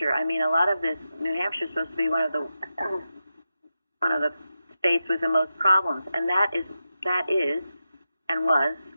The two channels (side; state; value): both; inverted; correlation -0.90